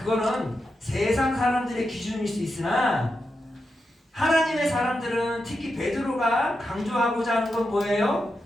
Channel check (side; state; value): both; normal; correlation 0.87